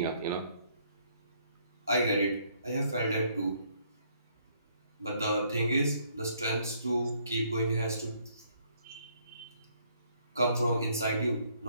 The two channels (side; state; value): both; inverted; correlation -0.68